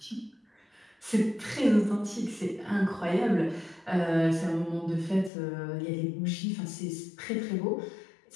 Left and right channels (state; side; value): drops out; right; at 5.3 s